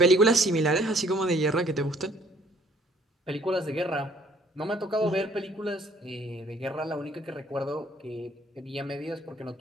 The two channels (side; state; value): both; normal; correlation 0.60